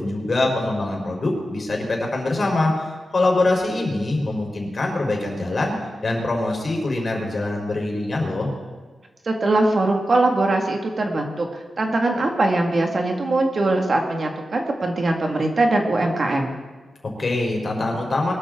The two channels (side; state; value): both; normal; correlation 0.91